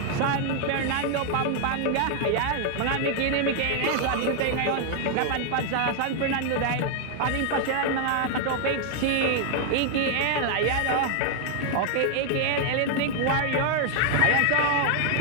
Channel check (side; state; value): both; different; correlation 0.00